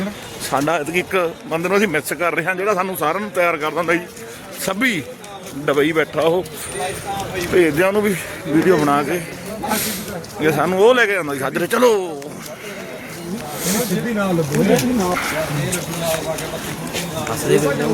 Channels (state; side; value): identical; both; correlation 1.00